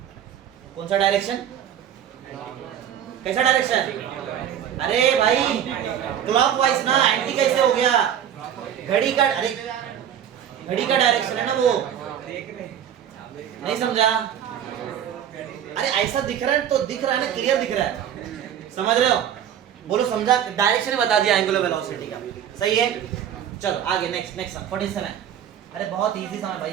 कौन सा डायरेक्शन? कैसा डायरेक्शन? अरे भाई क्लॉकवाइज ना, एंटी कैसे हो गया? घड़ी का, अरे घड़ी का डायरेक्शन है ना वो, नहीं समझा? अरे ऐसा दिख रहा है तो दिख रहा है ना, क्लियर दिख रहा है, समझ रहे हो? बोलो समझा? डायरेक्शन बता दिया एंगुलर वेलोसिटी का, सही है। चलो आगे, नेक्स्ट 47। अरे बहुत इजी समय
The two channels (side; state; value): left; quieter; 9.7 dB